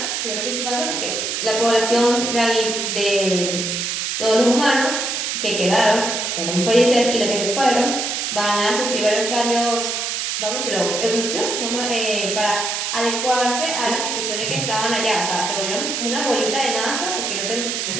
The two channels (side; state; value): right; noise; hiss, 2 dB below the sound